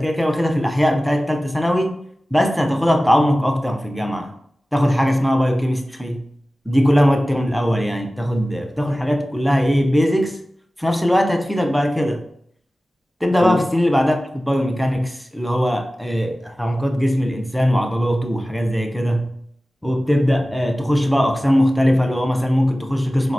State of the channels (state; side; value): normal; both; correlation 0.96